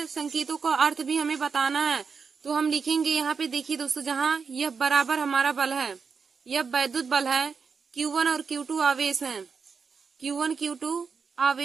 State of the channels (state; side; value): quieter; left; 5.6 dB